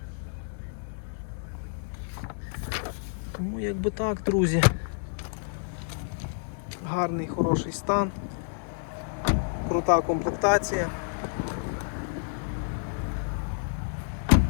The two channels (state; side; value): silent; right; digital silence